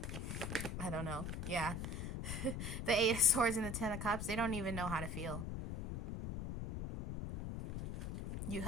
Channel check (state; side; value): noise; left; rumble, 4 dB below the sound